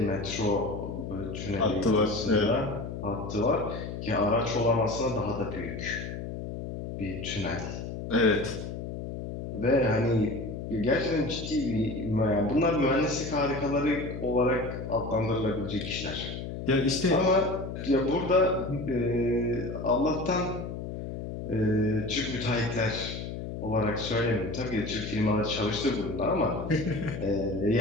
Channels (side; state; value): left; noise; hum, 7 dB below the sound